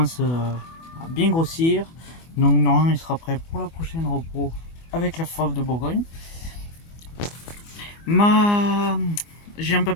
à bien grossir. Donc normalement il sera prêt pour la prochaine repos avec la Fauve de Bourgogne. J'ai un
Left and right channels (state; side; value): late; right; 24 ms